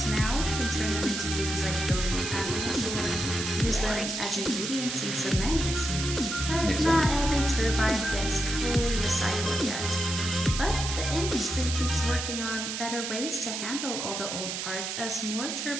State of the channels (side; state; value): right; noise; hiss, 4 dB below the sound